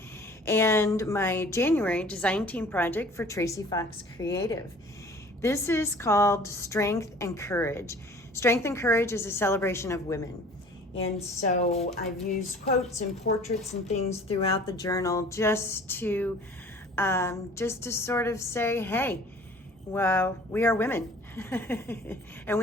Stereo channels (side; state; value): both; normal; correlation 0.48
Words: and my January design team project for Tracie Fox Creative. This is called Strength and Courage. Strength and Courage is a celebration of women. And so I've used quotes and portraits and things throughout the journal just to sort of say, hey, well, we are women and